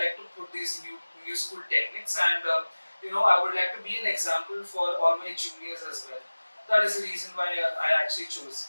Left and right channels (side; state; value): both; inverted; correlation -1.00